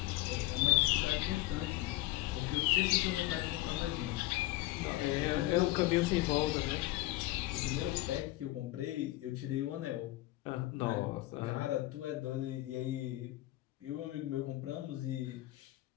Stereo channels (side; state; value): right; quieter; 17.8 dB